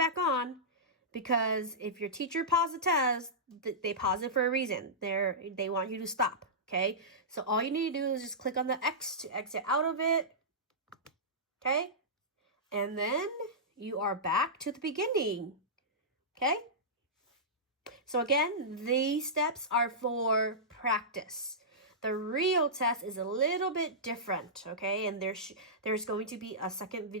on, because if your teacher paused the test, they pause it for a reason. They want you to stop. Okay, so all you need to do is just click on the X to exit out of it. Okay, and then you are back to the beginning. Okay, so again, these steps are for practice. The real test is a little bit different, okay? And there's going to be a second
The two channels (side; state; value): both; normal; correlation -0.16